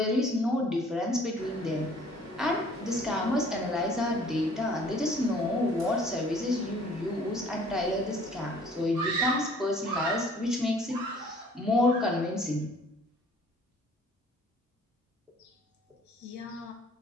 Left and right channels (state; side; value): normal; both; correlation 0.55